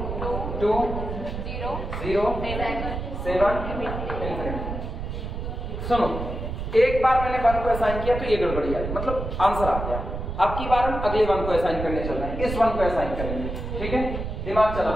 2 0 7 इंफिनिटी। सुनो, एक बार मैंने 1 को असाइन किया तो ये गड़बड़ी आई, मतलब आंसर आ गया। अब की बार हम अगले 1 को असाइन करने चल रहे हैं, इस 1 को असाइन करेंगे। ठीक है, दिमाग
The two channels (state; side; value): noise; right; rumble, 5 dB below the sound